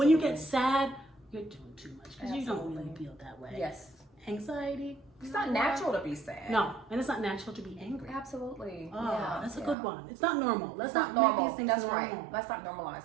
you get sad, you're doing too much because you don't really feel that way. Yes. Anxiety. It's not natural to be sad. No, and it's not natural to be angry. Absolutely. Oh, yeah, that's a good one. It's not normal. Let's not normal. make these things That's normal. right. Let's not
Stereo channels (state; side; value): drops out; left; at 9.8 s